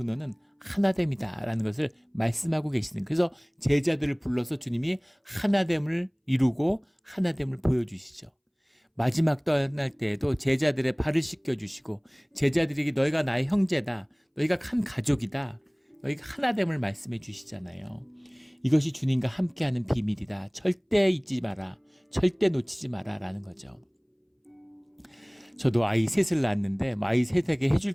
하나됨이다라는 것을 말씀하고 계시는, 그래서 제자들을 불러서 주님이 하나됨을 이루고 하나됨을 보여주시죠. 마지막 떠날 때에도 제자들의 발을 씻겨주시고 제자들에게 너희가 나의 형제다, 너희가 한 가족이다, 너희가 하나됨을 말씀해 주시잖아요. 이것이 주님과 함께하는 비밀이다. 절대 잊지 마라. 절대 놓치지 마라 라는 거죠. 저도 아이 셋을 낳았는데 아이 셋에게 해줄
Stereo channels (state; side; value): identical; both; correlation 1.00